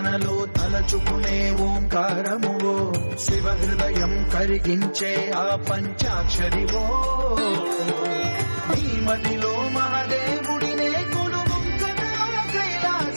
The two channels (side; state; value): both; inverted; correlation -1.00